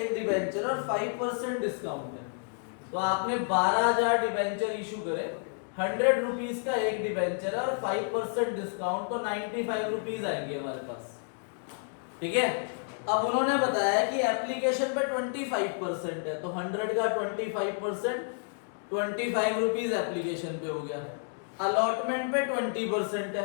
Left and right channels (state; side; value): silent; right; 58 dB below the other